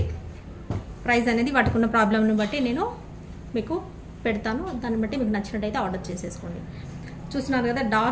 ప్రైస్ అనేది వాటికి ఉన్న ప్రాబ్లంని బట్టి నేను మీకు పెడతాను. దాన్ని బట్టి మీకు నచ్చినట్టయితే ఆర్డర్ చేసేసుకోండి. చూస్తున్నారు కదా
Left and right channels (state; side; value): identical; both; correlation 1.00